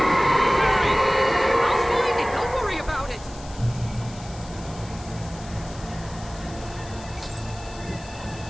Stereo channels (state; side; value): noise; left; hiss, 19 dB below the sound